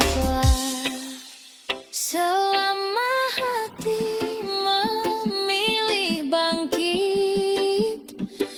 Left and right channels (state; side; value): identical; both; correlation 1.00